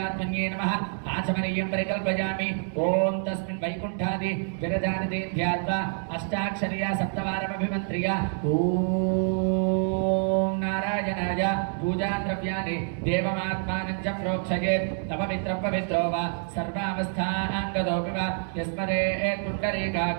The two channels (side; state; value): left; silent; 60 dB below the other